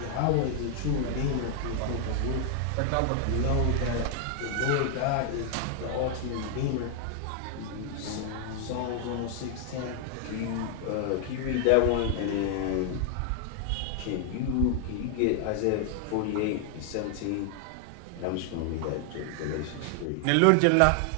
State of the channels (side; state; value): both; different; correlation 0.00